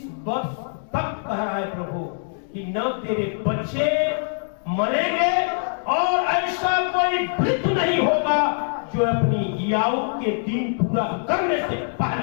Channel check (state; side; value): silent; right; digital silence